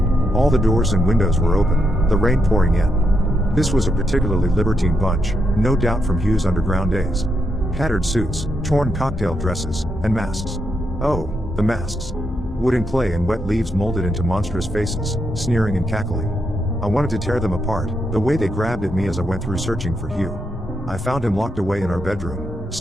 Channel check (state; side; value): normal; both; correlation 0.81